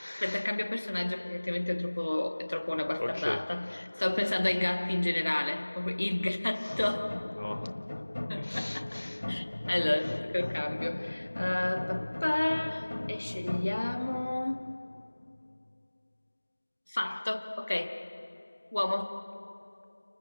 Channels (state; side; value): inverted; both; correlation -1.00